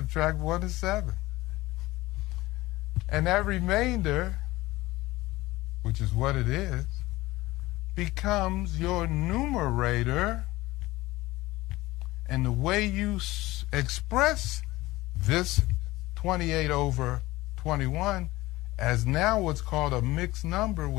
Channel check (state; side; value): quieter; right; 18.9 dB